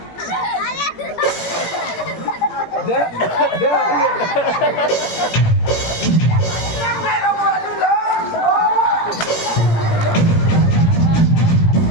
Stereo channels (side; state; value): right; late; 17 ms